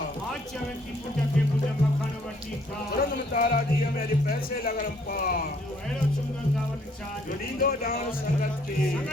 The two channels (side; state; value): both; normal; correlation 0.65